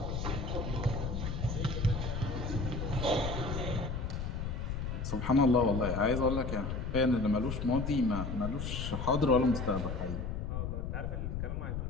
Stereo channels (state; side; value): noise; left; rumble, 3 dB below the sound